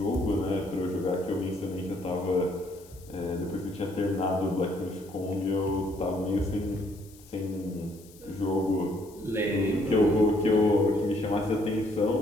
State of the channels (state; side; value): noise; left; hiss, 24 dB below the sound